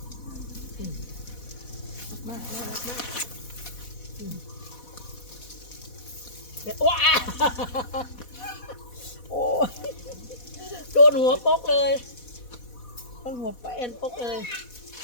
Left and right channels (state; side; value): late; right; 4.1 ms